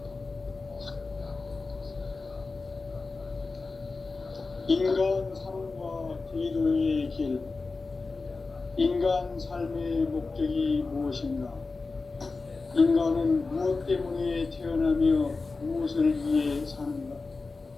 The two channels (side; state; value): right; quieter; 3.9 dB